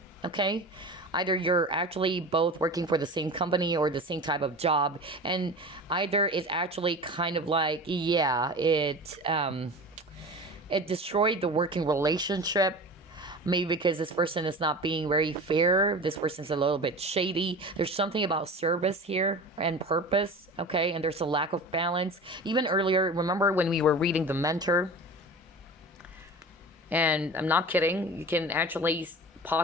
okay? Either you're actually both working for the same company or the same type of job. And either it's actually kind of like, yeah, it destroyed the working relationship. Maybe because this person is not being very fair. This person's a little bit shady. There's something about service here and purpose, okay? And there's a lack of balance. Even earlier, remember when we were reading The Mentor? And I'm not kidding. You can actually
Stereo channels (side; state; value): both; normal; correlation 0.34